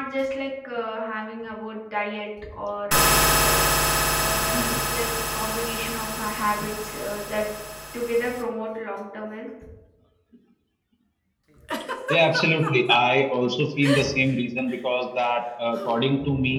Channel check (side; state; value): both; identical; correlation 1.00